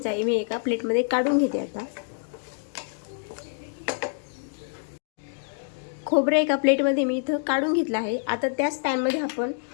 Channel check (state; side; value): silent; right; digital silence